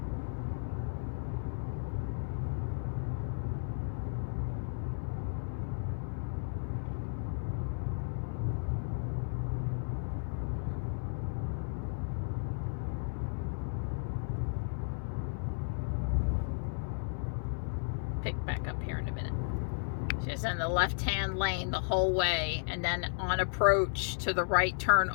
Pick back up here in a minute. She's in the left-hand lane the whole way, and then on approach to the right turn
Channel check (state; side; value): silent; right; digital silence